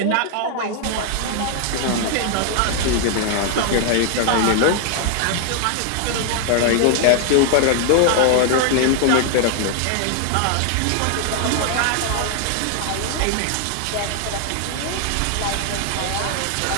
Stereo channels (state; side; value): different; both; correlation 0.00